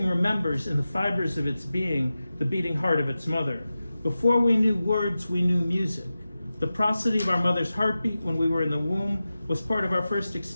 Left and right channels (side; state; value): both; inverted; correlation -0.94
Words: remembers in the fibers of its being the beating heart of its mother. Before we knew words, we knew music. The prosody of our mother's heartbeat when we were in the womb was part of our first